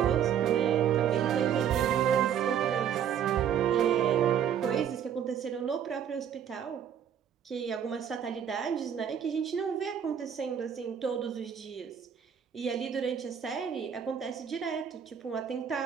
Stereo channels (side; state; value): left; quieter; 8.7 dB